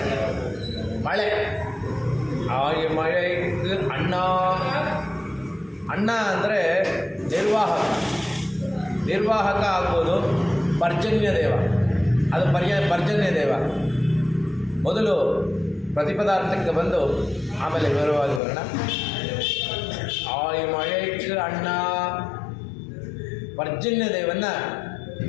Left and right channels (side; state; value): right; drops out; at 18.4 s